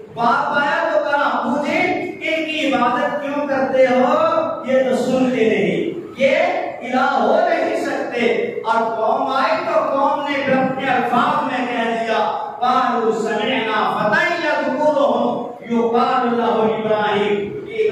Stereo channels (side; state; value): both; identical; correlation 1.00